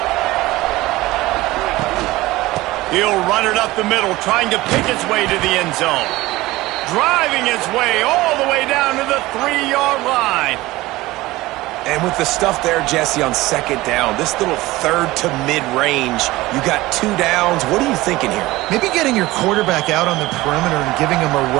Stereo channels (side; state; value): left; quieter; 18.8 dB